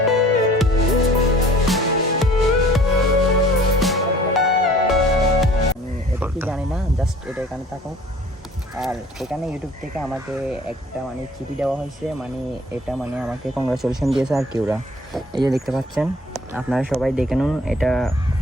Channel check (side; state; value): both; normal; correlation 0.52